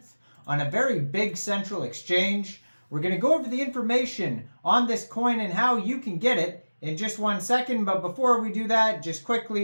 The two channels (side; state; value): both; inverted; correlation -1.00